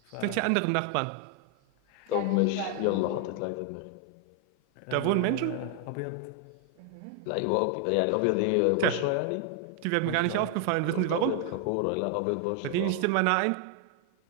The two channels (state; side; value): different; both; correlation 0.00